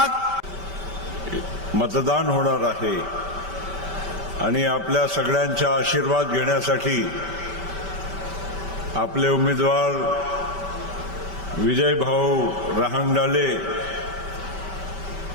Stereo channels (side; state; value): left; late; 5.2 ms